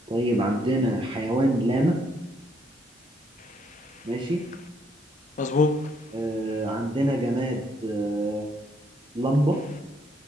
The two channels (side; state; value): both; normal; correlation 0.71